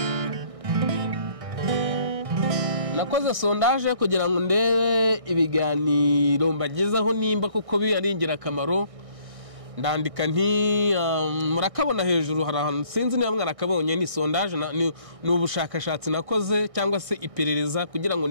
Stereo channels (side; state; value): left; late; 1.6 ms